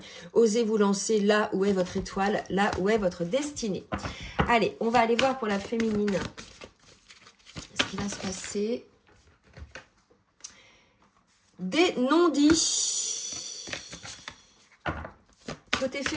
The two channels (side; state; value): both; identical; correlation 1.00